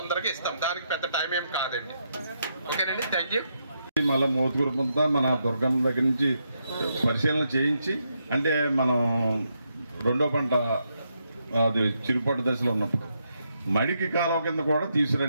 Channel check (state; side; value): inverted; both; correlation -0.80